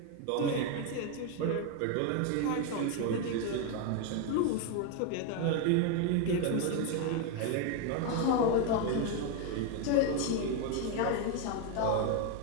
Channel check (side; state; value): both; different; correlation 0.02